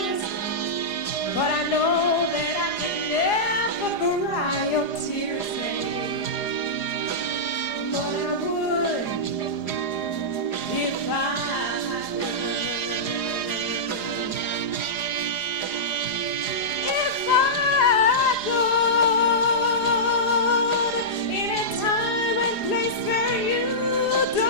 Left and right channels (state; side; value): late; right; 4.9 ms